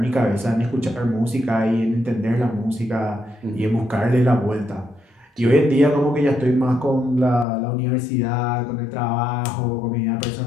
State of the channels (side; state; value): right; drops out; at 7.5 s